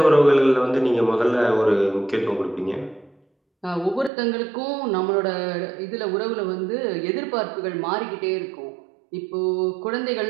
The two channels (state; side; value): drops out; left; at 4.1 s